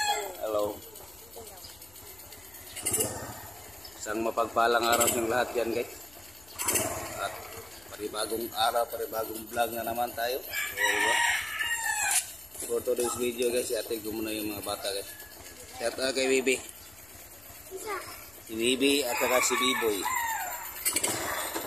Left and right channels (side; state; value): left; noise; hum, 25 dB below the sound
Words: Hello. Isang mapagpalang araw ng lahat yan, guys. At panibagong araw, panibagong vlog na naman tayo. For today's video, guys, atin ko muna yung mga bata, guys. Shout out kay Bibi. Si Bibi at saka si Biboy.